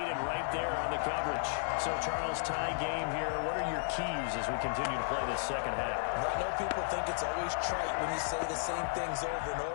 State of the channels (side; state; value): right; silent; digital silence